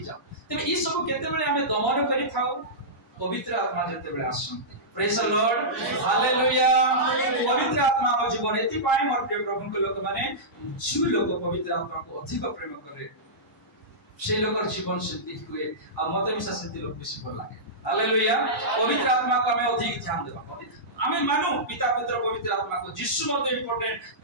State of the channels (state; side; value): normal; both; correlation -0.16